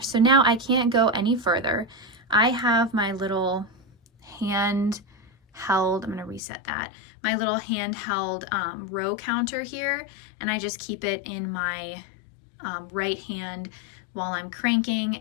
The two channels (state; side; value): drops out; right; at 6.4 s